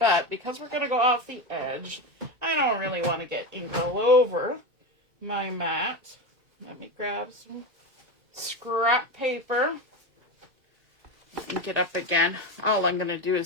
because we're going to go off the edge, I don't really want to get ink all over my mat. Let me grab some scrap paper. Ink it up again. All I'm going to do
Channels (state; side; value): late; left; 2.3 ms